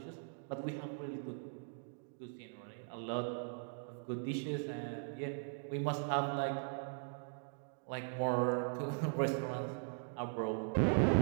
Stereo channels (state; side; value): silent; left; digital silence